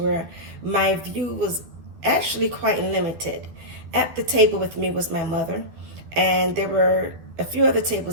where my view was actually quite limited. At the table with me was my mother. And there were a few other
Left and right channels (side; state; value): left; late; 12 ms